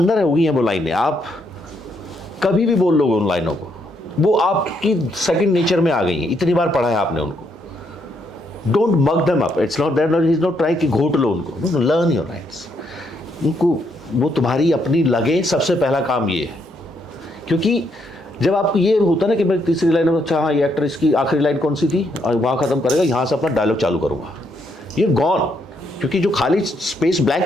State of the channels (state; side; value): normal; both; correlation 0.75